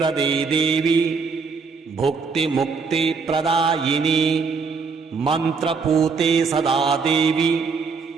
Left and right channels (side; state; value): left; quieter; 5.0 dB